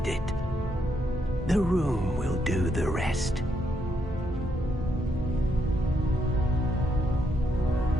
it. The room will do the rest.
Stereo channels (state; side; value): normal; both; correlation 0.77